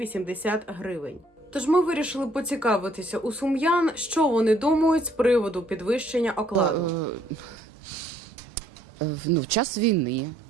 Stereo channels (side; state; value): both; normal; correlation 0.65